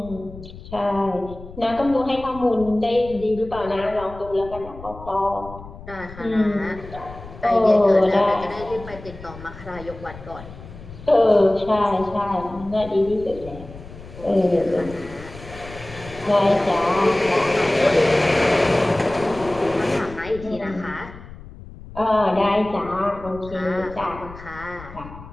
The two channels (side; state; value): left; noise; rumble, 16 dB below the sound